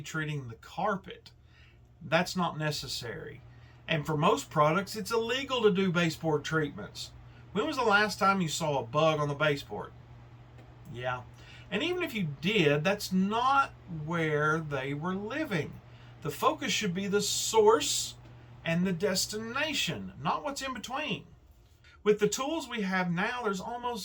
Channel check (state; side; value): identical; both; correlation 1.00